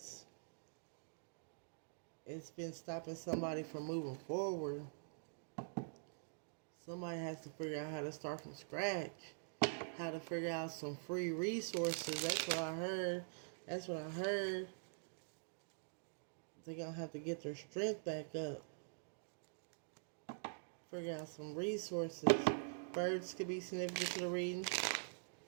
It's been stopping somebody from moving forward. Somebody has to figure out how to start from scratch. How to figure out some free resources. That's what I heard. That's what I heard. They're going to have to get their strength back up. Figure out some resources. Birds could be significant to the reading.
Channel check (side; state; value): left; silent; digital silence